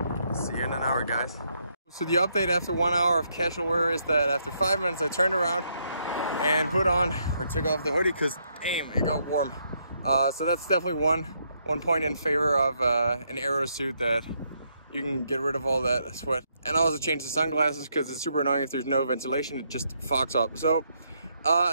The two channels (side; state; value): both; inverted; correlation -0.75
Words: See you in an hour, guys. So the update after 1 hour of casual wear is that after 5 minutes I turned around and put on or took off the hoodie because damn, it got warm. So that's definitely one point in favor of an aero suit, that you can get rid of all that sweat. And I also changed the sunglasses because it's super annoying if there's no ventilation, it just fogs up. So